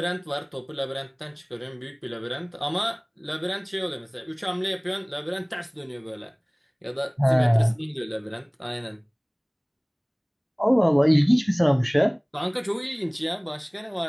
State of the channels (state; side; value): identical; both; correlation 1.00